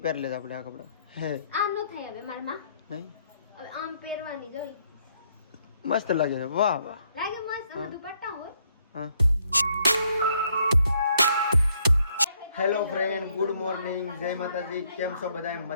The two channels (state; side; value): inverted; both; correlation -0.70